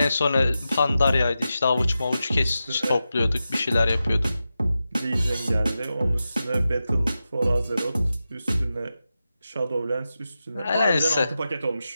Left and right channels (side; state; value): both; inverted; correlation -0.91